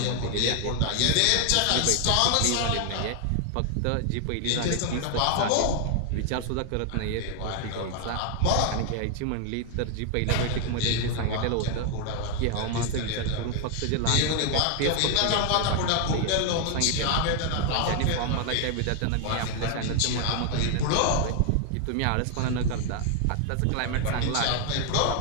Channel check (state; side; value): different; both; correlation 0.00